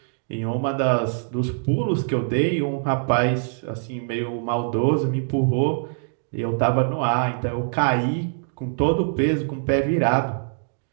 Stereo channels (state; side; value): silent; left; digital silence